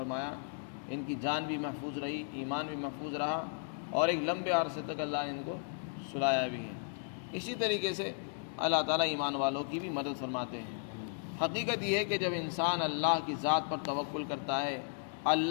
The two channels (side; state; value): right; silent; digital silence